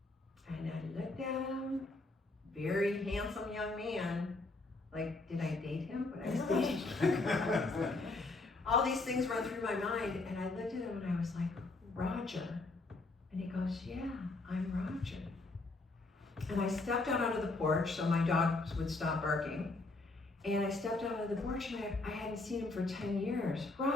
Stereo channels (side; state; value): right; quieter; 3.3 dB